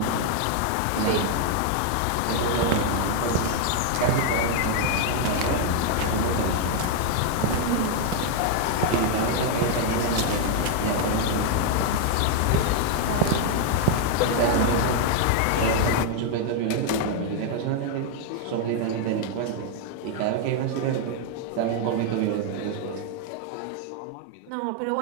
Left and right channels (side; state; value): both; different; correlation 0.00